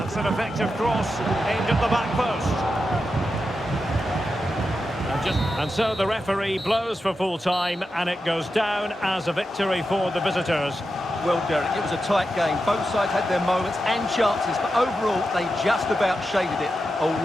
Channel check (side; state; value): both; normal; correlation 0.89